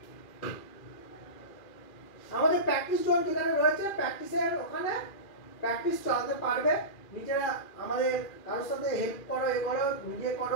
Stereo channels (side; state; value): right; late; 2.4 ms